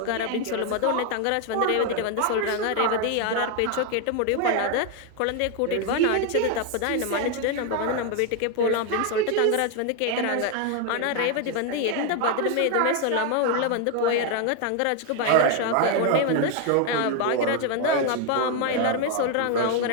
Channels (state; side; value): different; both; correlation 0.01